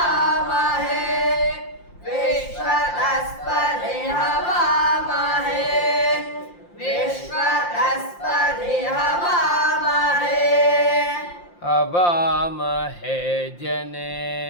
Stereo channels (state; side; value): late; right; 5.7 ms